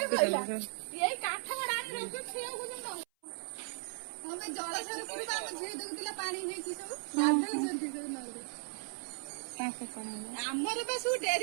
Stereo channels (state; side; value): silent; left; 53 dB below the other